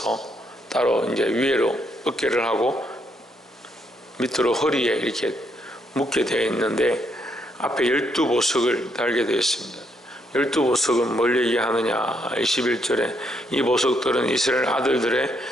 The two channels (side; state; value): both; normal; correlation 0.75